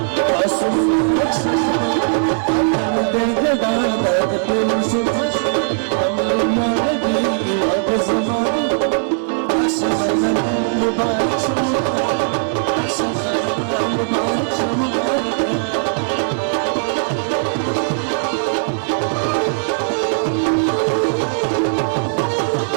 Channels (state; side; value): silent; left; 67 dB below the other